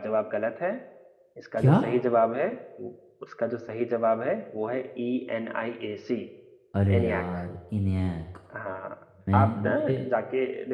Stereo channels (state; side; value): identical; both; correlation 1.00